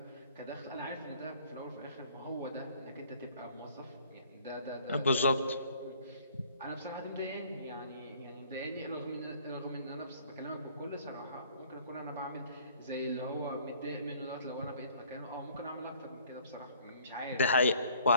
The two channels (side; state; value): both; inverted; correlation -0.57